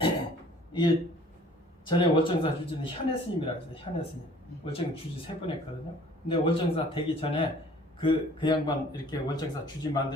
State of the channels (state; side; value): normal; both; correlation 0.53